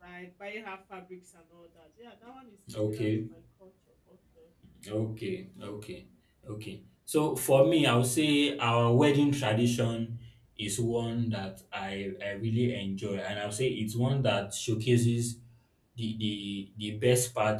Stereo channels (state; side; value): identical; both; correlation 1.00